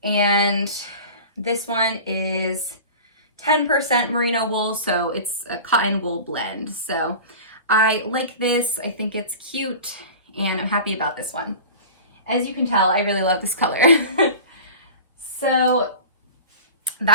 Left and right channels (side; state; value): both; inverted; correlation -0.36